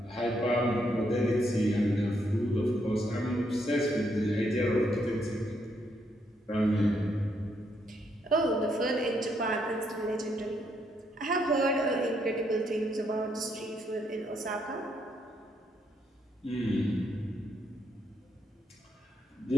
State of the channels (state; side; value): normal; both; correlation 0.75